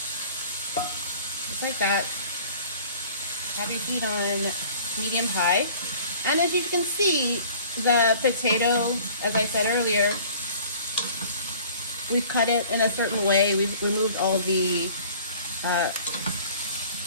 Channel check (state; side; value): inverted; both; correlation -0.49